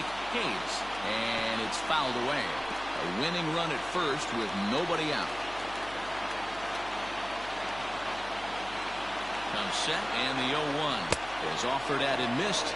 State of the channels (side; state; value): left; noise; hum, 18 dB below the sound